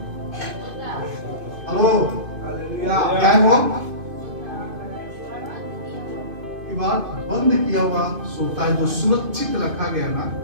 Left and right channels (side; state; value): left; late; 2.5 ms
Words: हेलो, क्या है वो? दीवार बंद किया हुआ सोता है, जो सुरक्षित रखा गया ना,